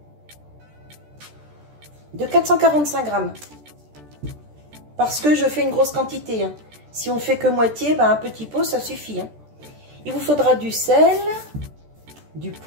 445 grammes. Parce que je fais une grosse quantité. Si on fait que moitié, un petit pot ça suffit. Il vous faudra du sel, du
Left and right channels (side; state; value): left; late; 14 ms